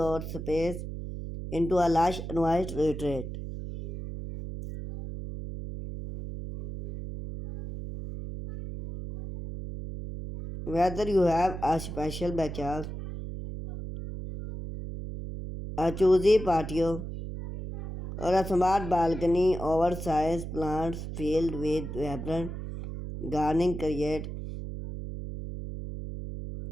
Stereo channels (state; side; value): noise; right; hum, 7 dB below the sound